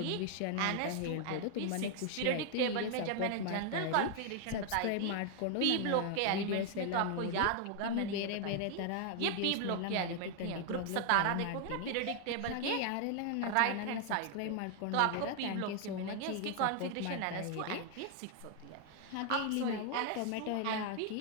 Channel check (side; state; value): both; different; correlation 0.00